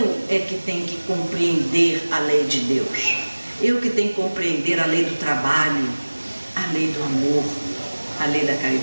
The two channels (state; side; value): inverted; both; correlation -1.00